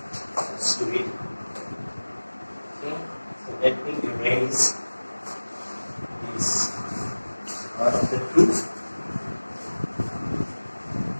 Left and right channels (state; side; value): inverted; both; correlation -1.00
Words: Let's do it. Let me erase this part of the proof.